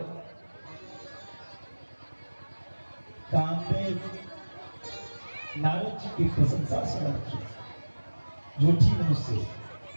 कामदेव नारद जी की प्रशंसा सुन झूठी मुंह से,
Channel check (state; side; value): inverted; both; correlation -1.00